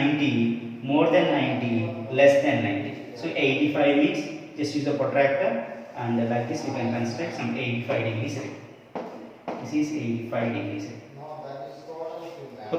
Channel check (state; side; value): identical; both; correlation 1.00